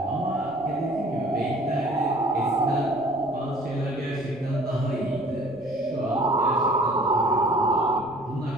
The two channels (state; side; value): noise; right; rumble, 25 dB below the sound